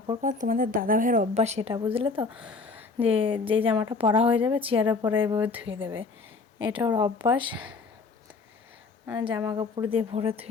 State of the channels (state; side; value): quieter; right; 4.2 dB